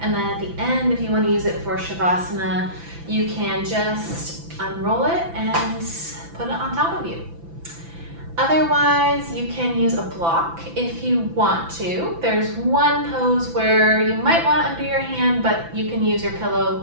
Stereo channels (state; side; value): late; left; 5.9 ms